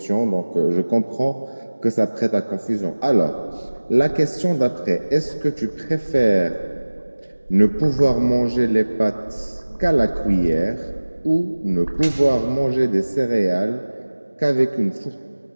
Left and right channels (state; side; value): inverted; both; correlation -1.00